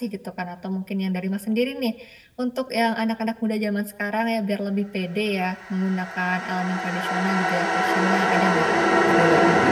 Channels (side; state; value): both; identical; correlation 1.00